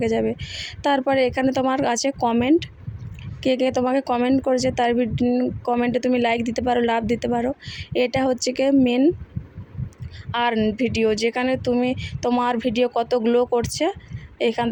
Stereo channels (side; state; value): both; identical; correlation 1.00